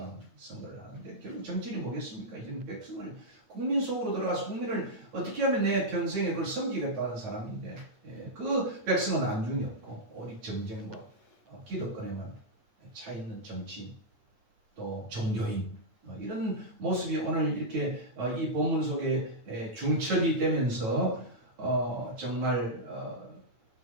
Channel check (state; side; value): late; left; 9.0 ms